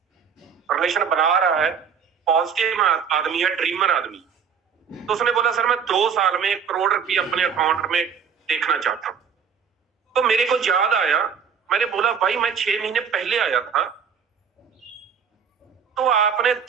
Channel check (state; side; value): quieter; left; 6.9 dB